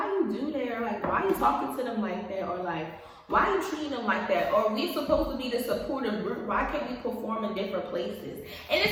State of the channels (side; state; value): both; identical; correlation 1.00